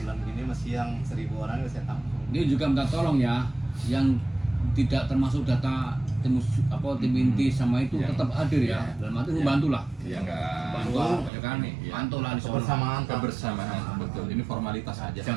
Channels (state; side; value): drops out; left; at 11.3 s